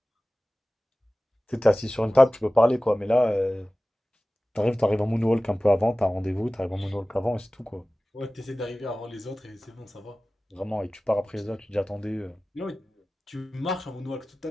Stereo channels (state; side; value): normal; both; correlation 0.97